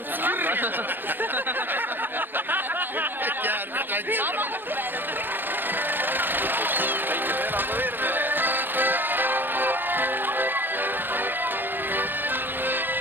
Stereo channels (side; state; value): left; late; 0.095 ms